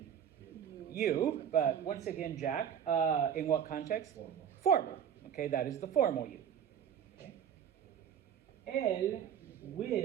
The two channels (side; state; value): left; quieter; 8.7 dB